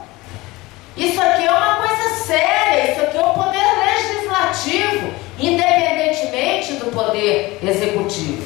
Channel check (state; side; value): quieter; right; 20.8 dB